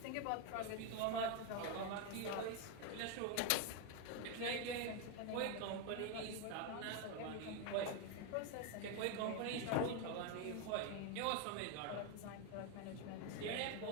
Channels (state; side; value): different; both; correlation 0.02